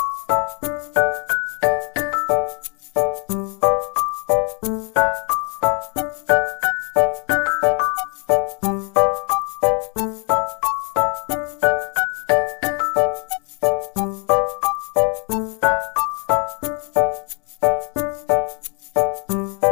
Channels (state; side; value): quieter; right; 36.8 dB